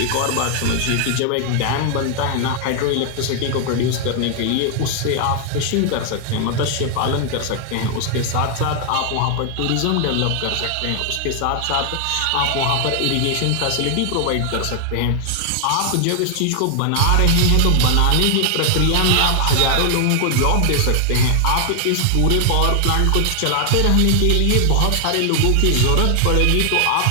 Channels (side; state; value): both; different; correlation 0.00